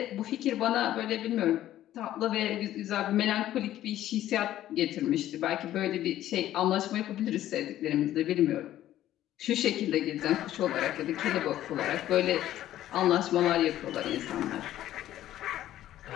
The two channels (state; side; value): quieter; right; 13.1 dB